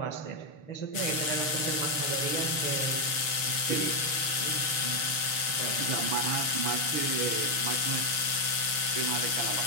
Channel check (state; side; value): late; right; 6.7 ms